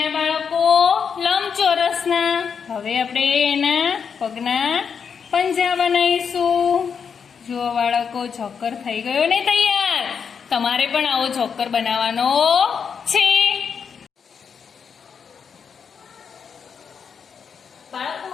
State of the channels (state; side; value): quieter; right; 6.6 dB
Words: બાળકો? લંબચોરસના. હવે આપણે એના પગના પંજા બનાવીશું. જુઓ બાળકો, જોકર થઈ ગયો ને તૈયાર. તમારે પણ આવો જોકર બનાવવાનો છે. બાળકો,